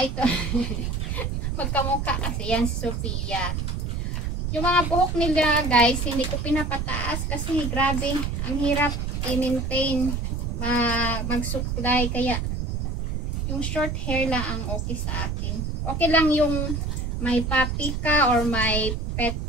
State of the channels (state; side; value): noise; right; rumble, 2 dB below the sound